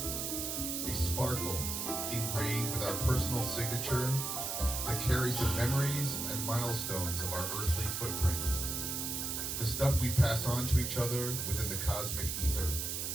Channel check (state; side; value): noise; right; hiss, 2 dB below the sound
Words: A sparkle ingrained with our personal signature that carries the memories and milestones of our earthly footprint. The stuff we pass on to each other within the cosmic ether.